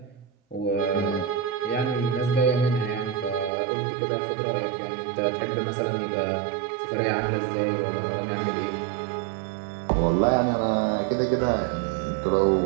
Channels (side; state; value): left; drops out; at 3.5 s